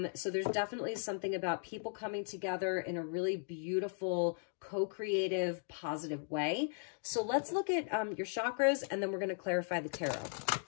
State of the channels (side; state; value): right; silent; 53 dB below the other